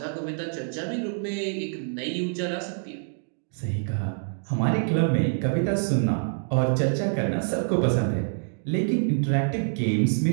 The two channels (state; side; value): silent; left; digital silence